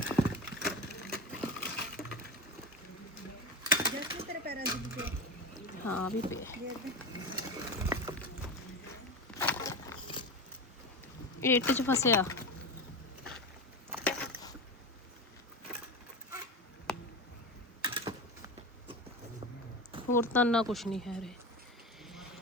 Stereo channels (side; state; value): both; normal; correlation 0.22